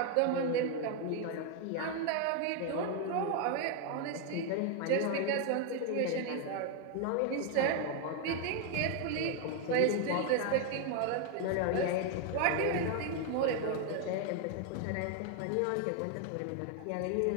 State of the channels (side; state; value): both; different; correlation 0.01